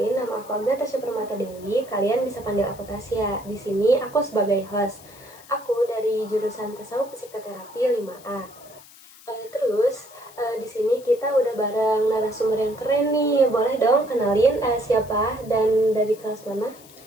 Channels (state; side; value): noise; left; hiss, 22 dB below the sound